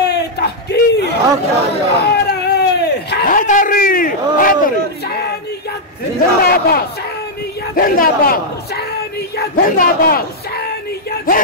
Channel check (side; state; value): both; normal; correlation -0.04